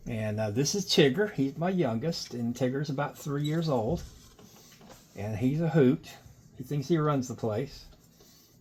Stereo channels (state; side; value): identical; both; correlation 1.00